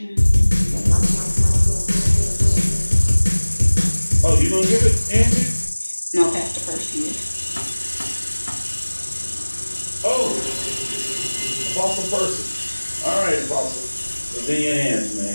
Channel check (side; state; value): both; inverted; correlation -1.00